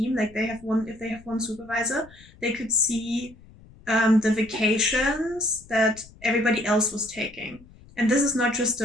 like if they have one supervisor, they could see the vacations that everybody else was taking. And this is not just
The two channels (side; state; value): left; noise; rumble, 23 dB below the sound